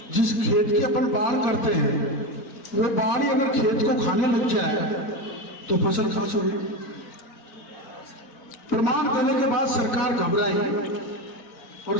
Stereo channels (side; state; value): right; late; 4.4 ms